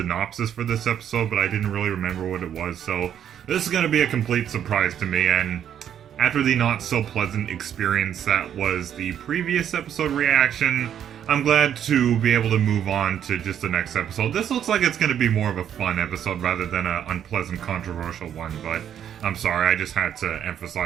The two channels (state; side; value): quieter; left; 9.5 dB